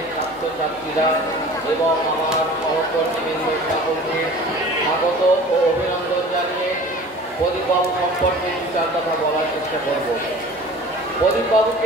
ছাত্রছাত্রীরা এবং আমার সহকর্মীবৃন্দ সকলকে স্বাগত ও অভিনন্দন জানিয়ে প্রদীপবাবু সম্পর্কে দু চার কথা বলার চেষ্টা করব।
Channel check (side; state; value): left; noise; hum, 26 dB below the sound